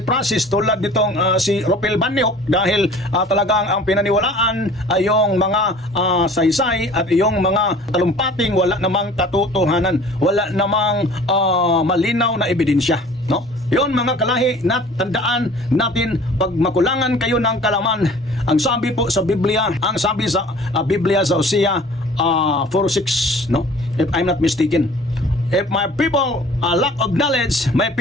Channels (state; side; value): normal; both; correlation 0.48